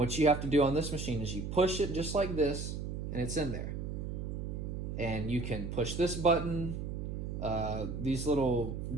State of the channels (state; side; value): noise; right; hum, 5 dB below the sound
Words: you have to do on this machine is you push it just like this, and it's in there. And you can push this button, these little